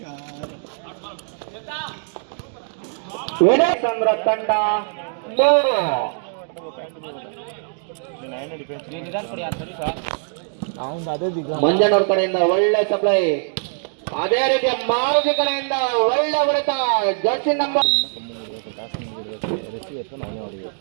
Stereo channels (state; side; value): silent; left; digital silence